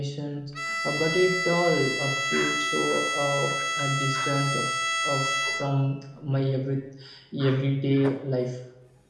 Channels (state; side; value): identical; both; correlation 1.00